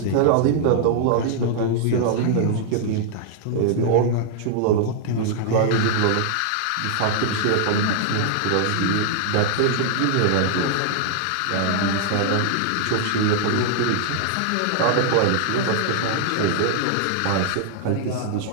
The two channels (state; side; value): different; both; correlation -0.01